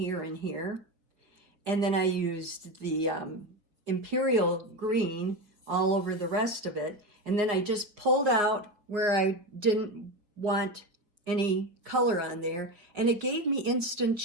and here. And then I used the Imperial green all over the rest of it. And then I just pulled out where I didn't want any color on there. And it gave me instant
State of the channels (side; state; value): left; late; 4.9 ms